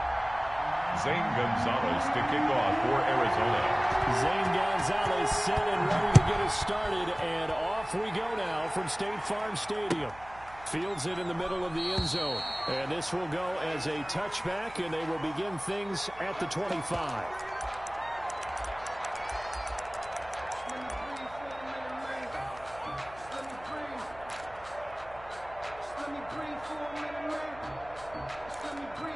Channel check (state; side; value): noise; right; hum, 21 dB below the sound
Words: Zane Gonzalez to kick off for Arizona. Zane Gonzalez set and ready to get us started, and off we go now from State Farm Stadium. Fields it in the middle of the end zone, and this will go as a touchback, and they will begin things at the 25.